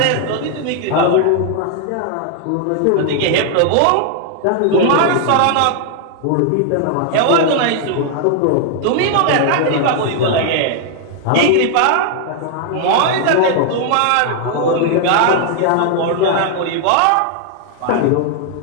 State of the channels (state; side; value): different; both; correlation 0.00